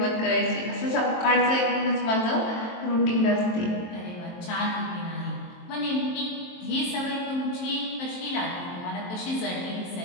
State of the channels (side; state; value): right; late; 23 ms